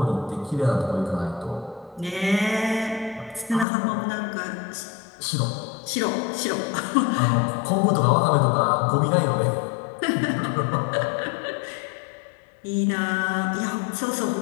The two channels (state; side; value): drops out; right; at 3.7 s